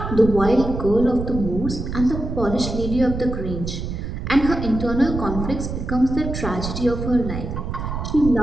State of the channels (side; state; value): right; noise; rumble, 5 dB below the sound